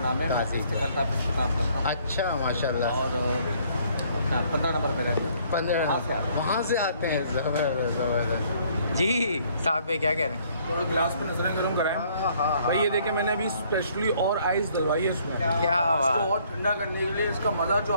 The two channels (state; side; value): inverted; both; correlation -0.63